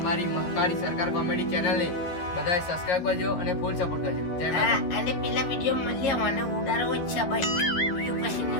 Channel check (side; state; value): right; late; 11 ms